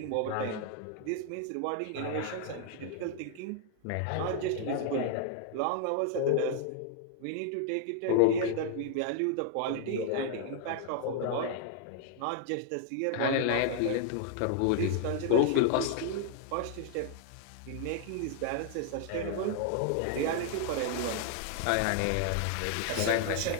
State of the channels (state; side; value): different; both; correlation 0.00